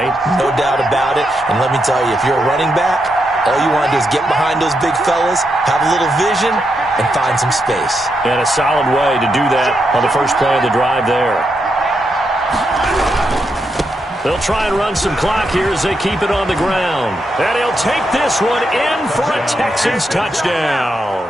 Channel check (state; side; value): normal; both; correlation 0.83